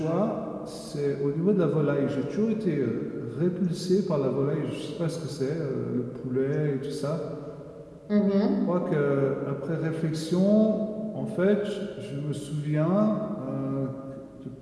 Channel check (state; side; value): identical; both; correlation 1.00